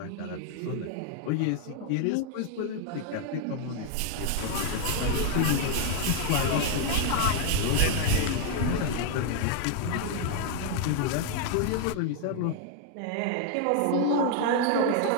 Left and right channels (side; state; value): both; different; correlation 0.00